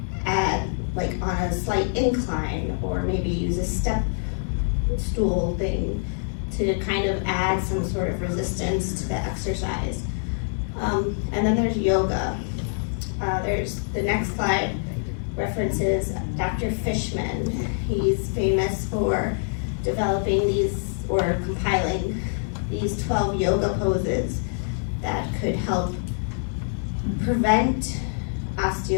on a slight incline, or maybe use a step stool thing to kind of add some sort of resistance to the exercise. And then there's yoga. There's the next slide references Dr. Fishman. He's famous for developing or compiling these 12 yoga poses that could help prevent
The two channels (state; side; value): silent; right; digital silence